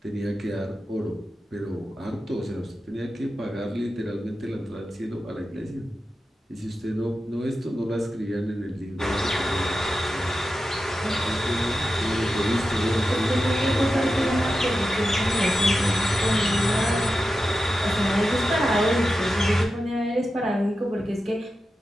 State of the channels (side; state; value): both; normal; correlation 0.91